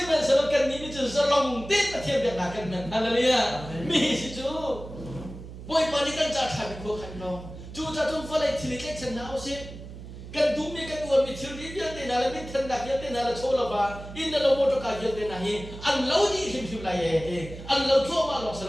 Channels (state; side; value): noise; right; hum, 13 dB below the sound